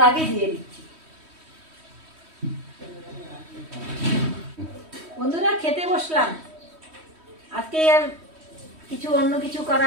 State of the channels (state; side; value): late; left; 3.1 ms